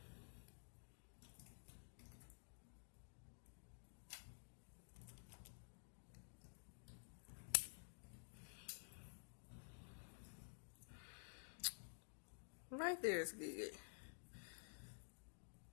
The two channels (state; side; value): silent; right; digital silence